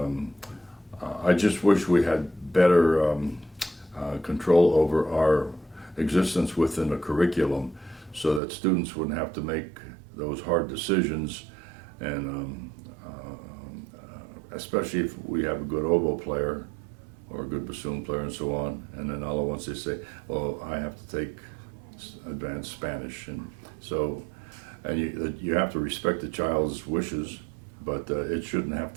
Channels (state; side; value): drops out; left; at 8.4 s